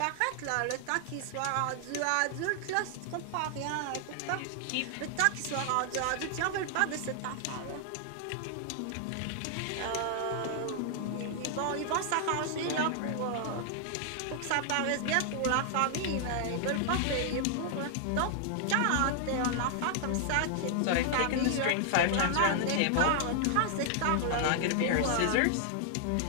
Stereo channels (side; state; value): both; different; correlation 0.00